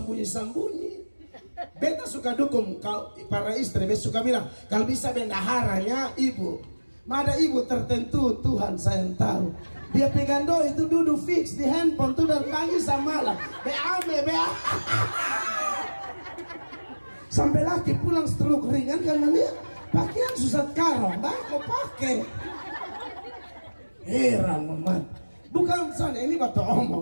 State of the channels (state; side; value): inverted; both; correlation -1.00